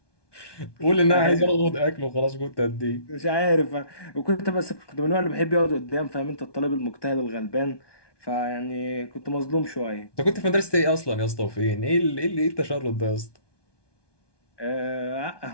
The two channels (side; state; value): right; late; 1.2 ms